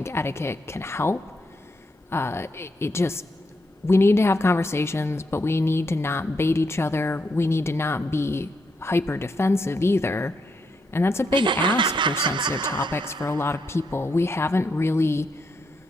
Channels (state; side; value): normal; both; correlation 0.80